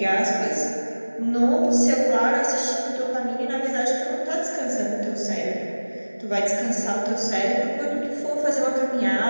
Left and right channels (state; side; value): inverted; both; correlation -1.00